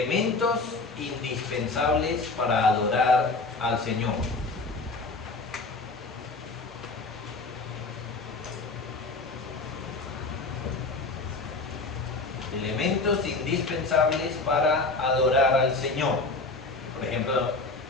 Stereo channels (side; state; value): right; quieter; 3.6 dB